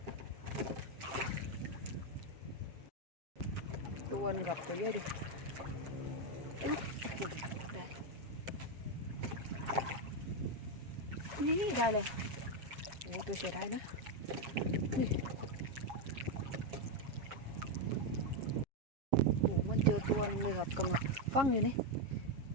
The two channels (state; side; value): late; left; 7.3 ms